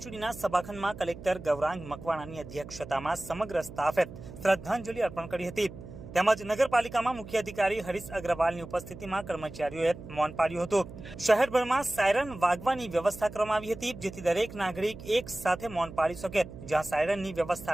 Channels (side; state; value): right; noise; hum, 14 dB below the sound